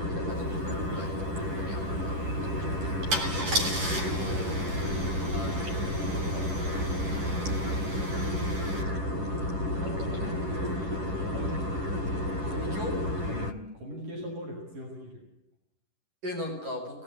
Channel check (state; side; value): late; left; 10 ms